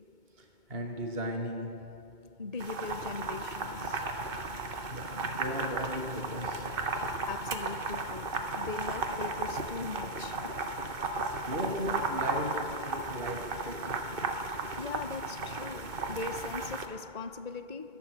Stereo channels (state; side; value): late; left; 2.2 ms